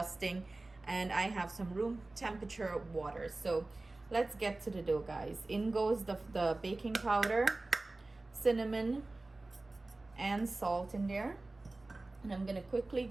and I have some room temperature water. So let's get to the dough, guys. In goes the baking powder, cinnamon, and salt in there. And I'm gonna quickly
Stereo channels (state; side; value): quieter; left; 3.1 dB